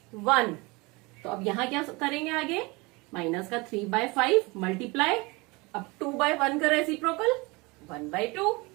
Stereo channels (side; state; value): left; quieter; 25.5 dB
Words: 1। तो अब यहाँ क्या करेंगे आगे, माइनस का 3/5 मल्टीप्लाई, अब 2/1 का रेसिप्रोकल 1/2,